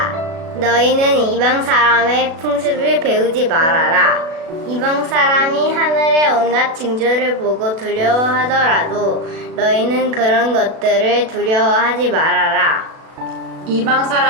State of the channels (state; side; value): late; left; 36 ms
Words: 너희는 이방 사람의 풍습을 배우지 말아라. 이방 사람이 하늘의 온갖 징조를 보고 두려워하더라도 너희는 그런 것들을 두려워하지 말아라. 이방